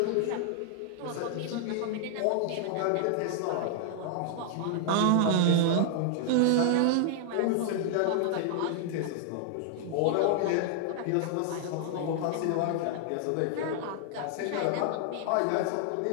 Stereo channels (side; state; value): both; different; correlation 0.00